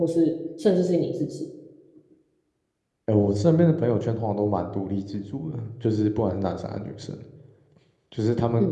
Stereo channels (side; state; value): both; identical; correlation 1.00